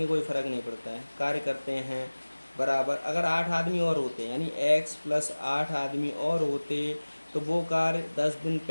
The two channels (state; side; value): inverted; both; correlation -1.00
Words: कोई फ़र्क नहीं पड़ता है, कार्य करते हैं बराबर। अगर 8 आदमी और होते यानी x प्लस 8 आदमी और होते तो वो कार्य 10 दिन